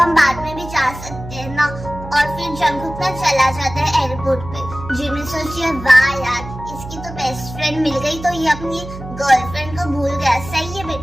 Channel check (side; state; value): right; noise; hum, 12 dB below the sound